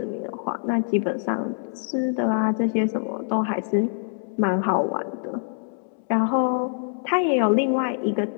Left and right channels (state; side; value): silent; right; 62 dB below the other